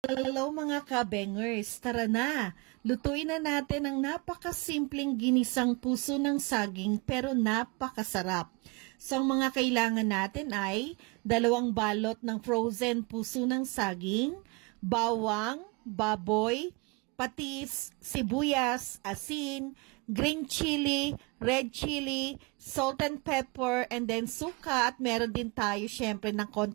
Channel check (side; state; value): left; quieter; 28.3 dB